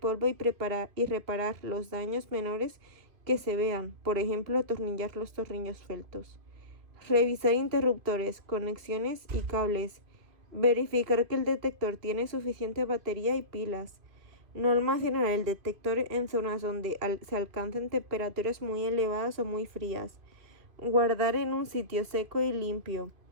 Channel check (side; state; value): left; late; 2.4 ms